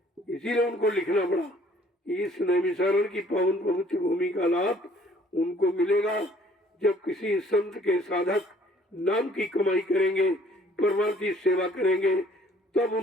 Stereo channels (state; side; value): normal; both; correlation 0.58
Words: इसीलिए उनको लिखना पड़ा इस नैमिषारण की पावन पवित्र भूमि का लाभ उनको मिलेगा जब किसी संत के साधक नाम की कमाई करेंगे, परमार्थी सेवा करेंगे, तब